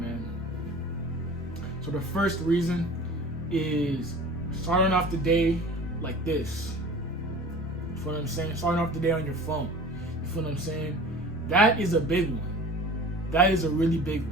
So the first reason is starting off the day like this. You feel what I'm saying? Starting off the day on your phone. You feel what I'm saying? That is a big one. That is a really big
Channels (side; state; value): both; normal; correlation 0.41